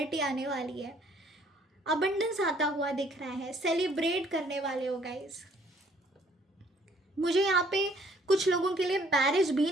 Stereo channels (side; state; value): both; normal; correlation 0.61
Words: आने वाली है, अबंडेंस आता हुआ दिख रहा है, सेलिब्रेट करने वाले हो गाइज। मुझे यहाँ पे कुछ लोगों के लिए मैरिज भी